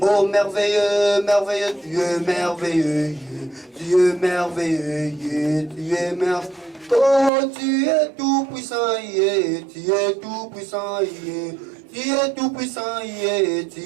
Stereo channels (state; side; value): drops out; left; at 7.3 s